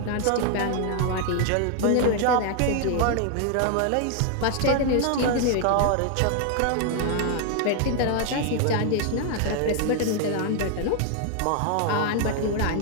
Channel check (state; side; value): different; both; correlation 0.00